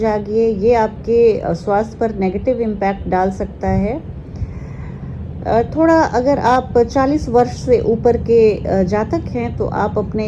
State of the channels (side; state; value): both; identical; correlation 1.00